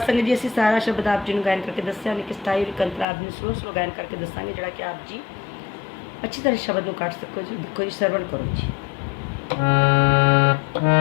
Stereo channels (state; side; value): drops out; right; at 3.1 s